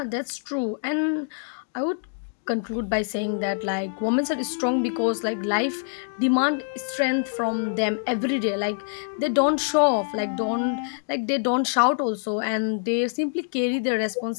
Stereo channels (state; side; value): silent; right; digital silence